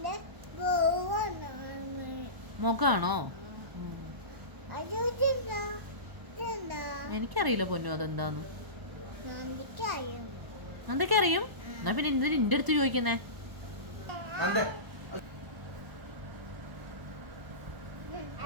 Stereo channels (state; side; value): late; left; 1.0 ms